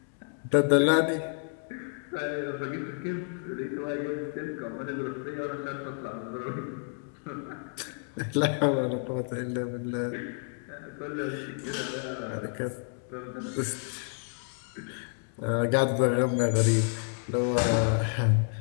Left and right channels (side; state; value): right; silent; 58 dB below the other